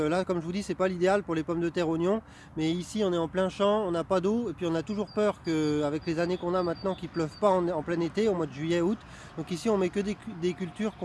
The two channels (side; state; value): both; identical; correlation 1.00